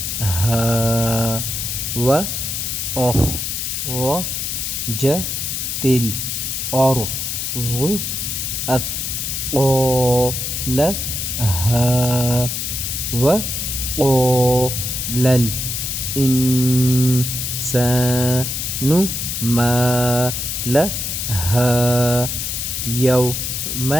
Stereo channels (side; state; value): left; noise; hiss, 3 dB below the sound